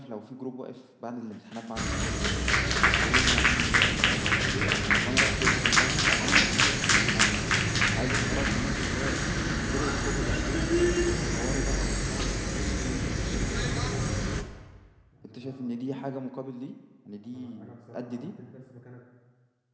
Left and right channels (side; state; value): both; identical; correlation 1.00